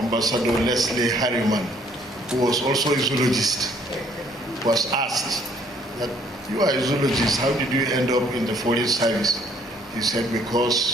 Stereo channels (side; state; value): both; normal; correlation 0.62